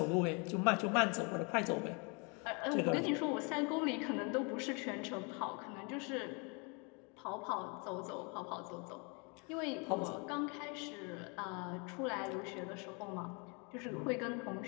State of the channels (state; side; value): quieter; right; 32.9 dB